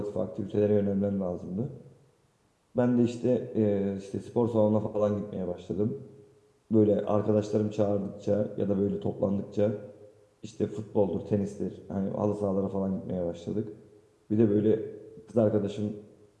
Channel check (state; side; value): identical; both; correlation 1.00